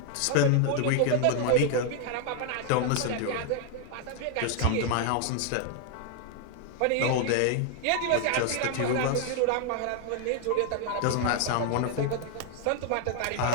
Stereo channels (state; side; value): different; both; correlation 0.00